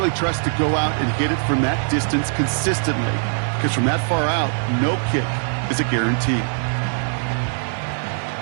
trust to go out and hit it from that distance consistently. Because from that far out, no kick is a guarantee.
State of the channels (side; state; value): left; silent; 60 dB below the other